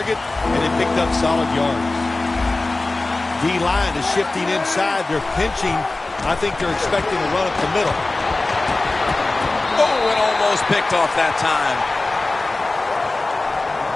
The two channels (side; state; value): right; quieter; 3.1 dB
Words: and it picked up solid yards. D-line is shifting inside. They're pinching. I think they're expecting a run up the middle. Oh, it almost picked off that time.